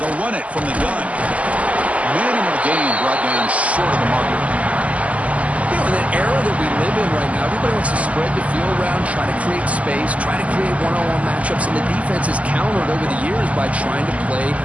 They'll run it from the gun. Minimal gain brought down short of the marker. You know, in the era that we live in right now, everybody wants to spread the field around, try to create space, try to create one-on-one matchups, and the defense has countered over the years by trying to play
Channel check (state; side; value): late; left; 0.069 ms